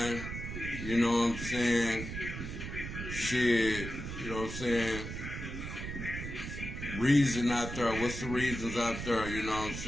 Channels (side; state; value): right; noise; rumble, 7 dB below the sound